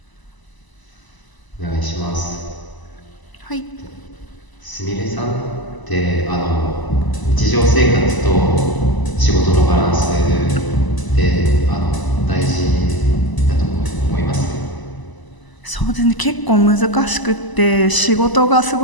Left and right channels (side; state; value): right; late; 1.0 ms